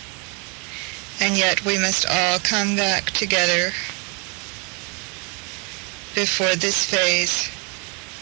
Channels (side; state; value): left; quieter; 32.6 dB